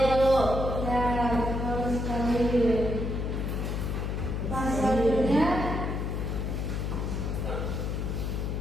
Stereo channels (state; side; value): noise; left; hum, 1 dB below the sound